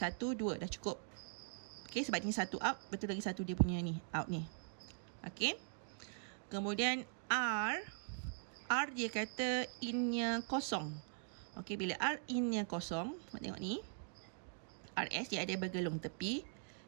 2 dah cukup. Okey, sebab ni satu out, betul lagi satu dia punya ni, out ni. Okey. Kemudian R dia kata in-nya kosong. Okey, bila R in-nya kosong, tengok ni. RS dia ada bergelung tepi.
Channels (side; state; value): left; silent; digital silence